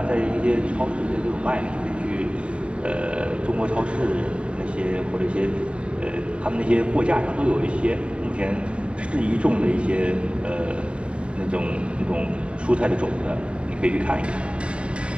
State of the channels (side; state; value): left; late; 0.058 ms